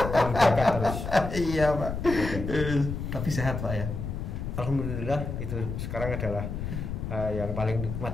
Menjaga terus. Iya Pak. Tapi sehat Pak ya. Alhamdulillah itu sekarang adalah yang paling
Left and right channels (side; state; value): left; noise; rumble, 5 dB below the sound